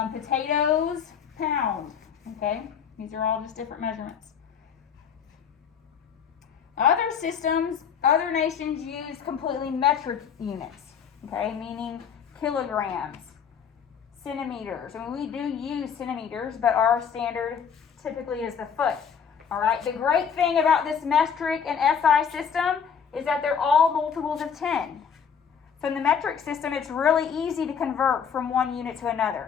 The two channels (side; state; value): right; quieter; 7.2 dB